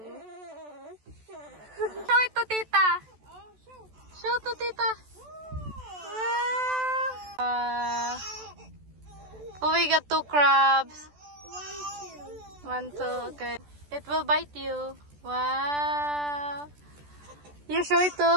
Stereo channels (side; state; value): left; late; 14 ms